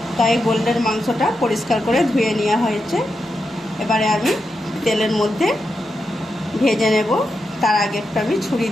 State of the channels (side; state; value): both; normal; correlation 0.87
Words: তাই গোল্ডেন মাংসটা পরিষ্কার করে ধুয়ে নেওয়া হয়েছে। এবারে আমি তেলের মধ্যে ভেজে নেব। তার আগে একটু আমি ছুরি